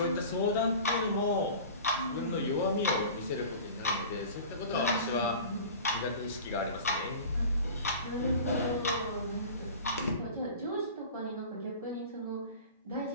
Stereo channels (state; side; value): inverted; both; correlation -0.38